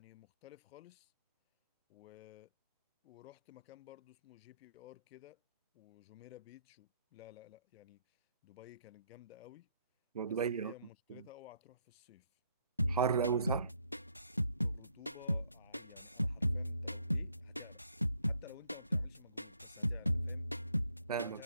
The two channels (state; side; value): inverted; both; correlation -0.71